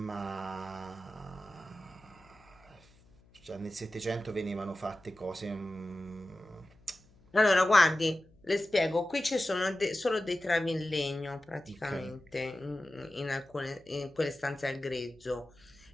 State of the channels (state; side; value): noise; left; hum, 28 dB below the sound